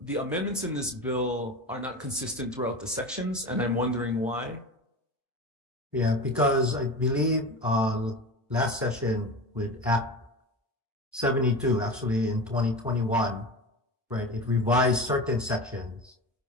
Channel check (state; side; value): normal; both; correlation 0.28